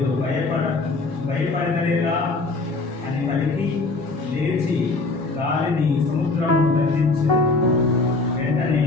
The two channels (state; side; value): quieter; right; 3.5 dB